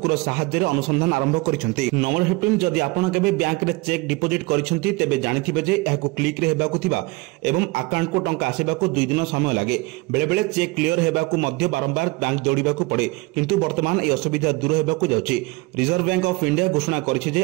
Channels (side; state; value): left; quieter; 23.4 dB